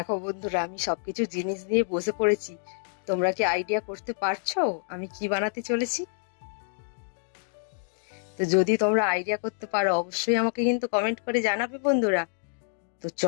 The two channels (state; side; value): silent; right; digital silence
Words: বন্ধুরা, আমি সবকিছু জিনিস দিয়ে বসে পড়েছি। তোমরা কি আইডিয়া করতে পারছো আমি কি বানাতে চলেছি? তো যদি তোমরা আইডিয়া করতে পারো অবশ্যই আমাকে কিন্তু কমেন্ট করে জানাবে বন্ধুরা। তো